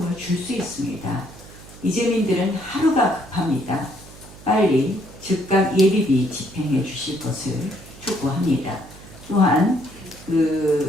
줄 수 있습니다. 이재민들은 하루가 급합니다. 빨리 즉각 예비비 집행해 주실 것을 촉구합니다. 또한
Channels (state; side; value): noise; right; hum, 19 dB below the sound